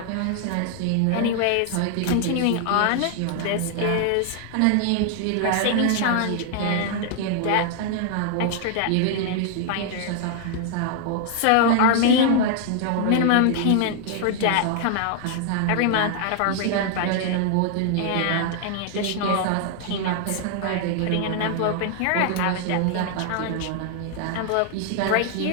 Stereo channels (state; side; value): different; both; correlation 0.00